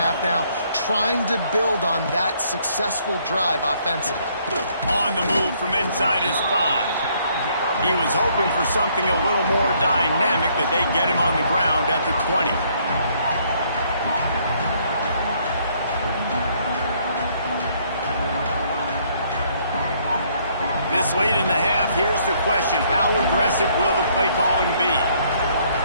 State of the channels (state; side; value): inverted; both; correlation -0.66